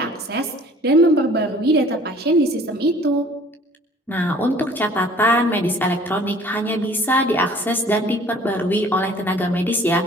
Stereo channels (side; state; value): both; normal; correlation 0.51